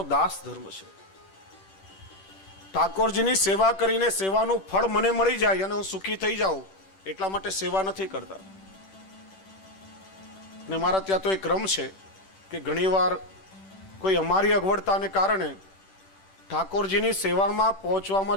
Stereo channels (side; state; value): right; late; 10 ms